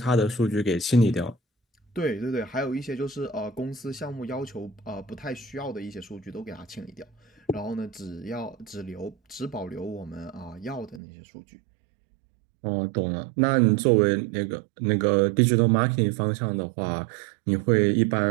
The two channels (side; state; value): left; drops out; at 11.0 s